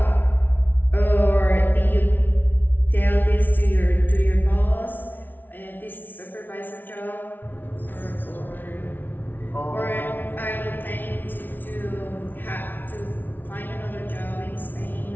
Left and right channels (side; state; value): right; late; 0.088 ms